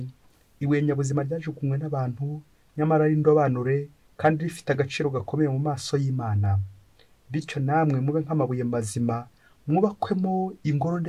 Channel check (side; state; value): both; identical; correlation 1.00